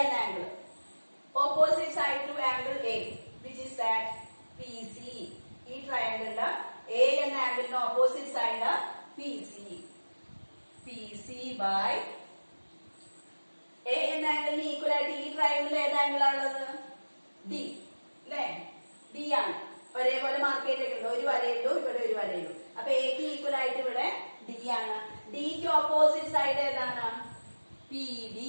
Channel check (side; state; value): both; inverted; correlation -1.00